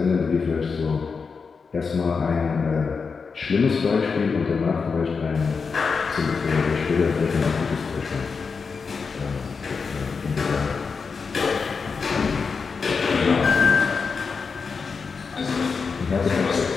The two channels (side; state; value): right; quieter; 5.2 dB